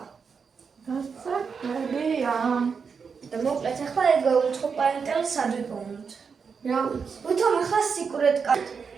გასაგებია. და მოკლედ ახლა ეგ უცხო პლანეტელი სად ვიპოვნოთ? რა ვიცი. ვითომ ახლა სიკრეტ კარტ.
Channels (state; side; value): quieter; left; 5.8 dB